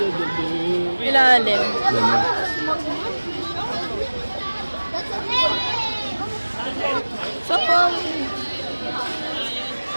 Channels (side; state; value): both; inverted; correlation -1.00